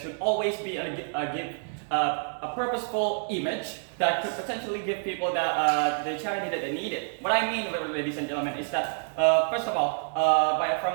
always be give a purposeful image that could potentially give people the charity that they needed. What I mean, ladies and gentlemen, is that first of all,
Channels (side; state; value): left; silent; digital silence